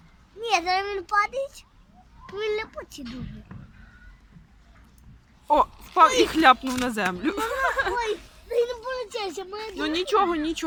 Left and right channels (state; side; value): identical; both; correlation 1.00